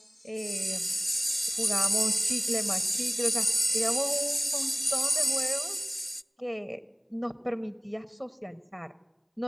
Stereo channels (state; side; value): identical; both; correlation 1.00